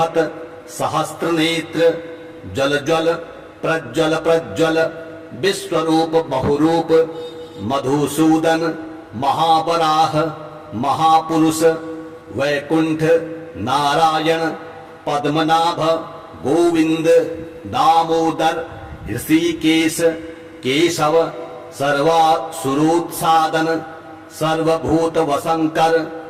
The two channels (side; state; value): both; identical; correlation 1.00